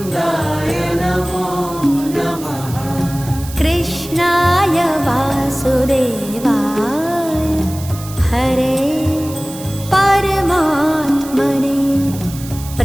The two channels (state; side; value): noise; right; hiss, 15 dB below the sound